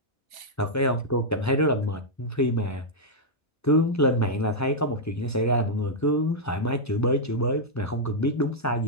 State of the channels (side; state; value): both; normal; correlation -0.06